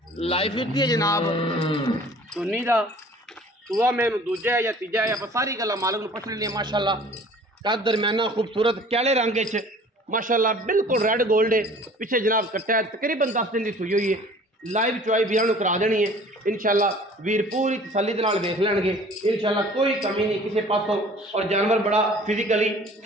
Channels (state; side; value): normal; both; correlation 0.49